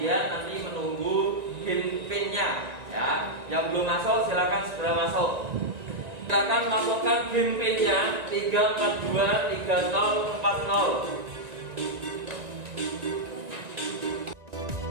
nanti menunggu PIN-nya. Ya, yang belum masuk silakan segera masuk. Silakan masukkan PIN-nya 3423040.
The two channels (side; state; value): left; late; 1.9 ms